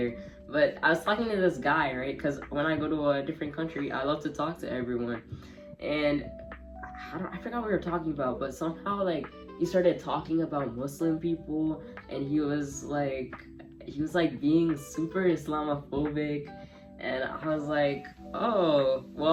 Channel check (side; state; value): both; identical; correlation 1.00